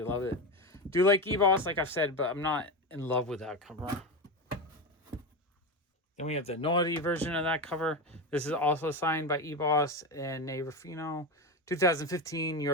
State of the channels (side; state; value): both; normal; correlation 0.18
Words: love it. Do like Eboss, like I've said, but I'm not in love with that cover. Then we have the naughty version of that cover. This is also signed by Eboss and Nate Ruffino. 2015 New